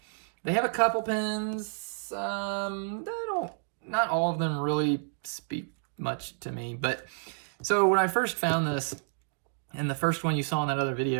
They have a couple pens. Not all of them really speak much to me. But so when I first found this, and the first one you saw in that other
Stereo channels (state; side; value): silent; left; digital silence